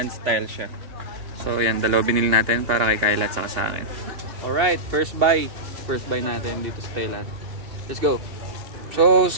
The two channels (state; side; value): late; left; 2.8 ms